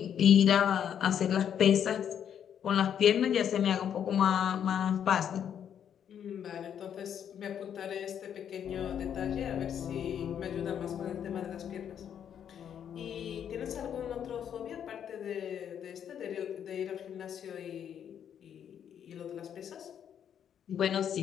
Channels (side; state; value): right; quieter; 8.9 dB